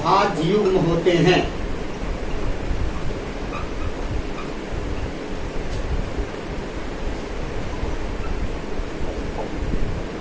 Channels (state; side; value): identical; both; correlation 1.00